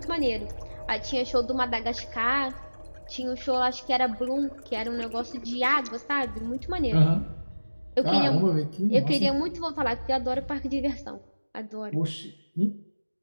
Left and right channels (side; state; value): both; inverted; correlation -1.00